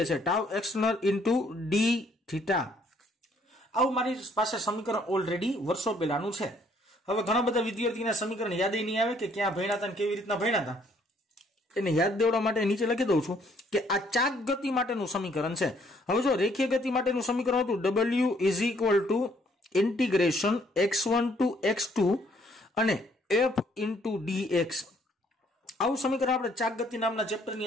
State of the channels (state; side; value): normal; both; correlation 0.65